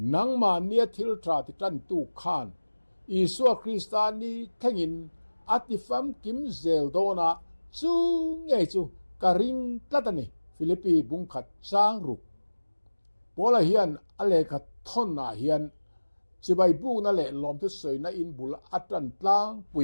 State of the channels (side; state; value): both; inverted; correlation -1.00